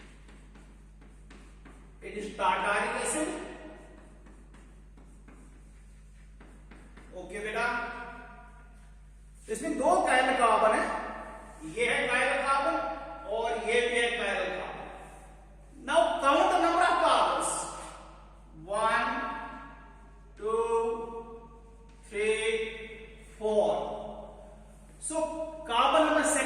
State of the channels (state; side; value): identical; both; correlation 1.00